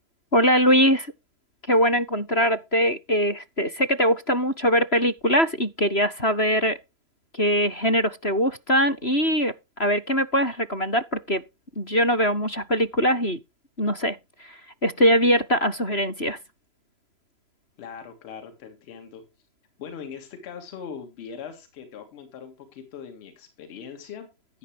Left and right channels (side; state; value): right; late; 3.0 ms